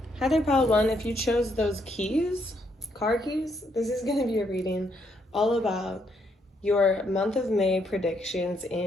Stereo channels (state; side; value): normal; both; correlation 0.74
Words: Hi there, pile one. If you chose those keys, car keys, this is going to be a reading all about your month of May predictions